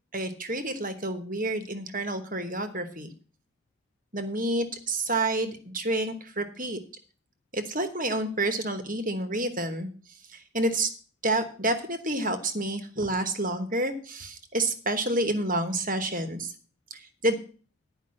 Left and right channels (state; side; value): normal; both; correlation 0.17